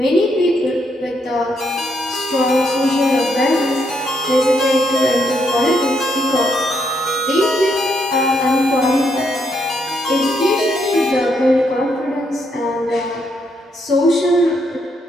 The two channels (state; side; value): normal; both; correlation 0.76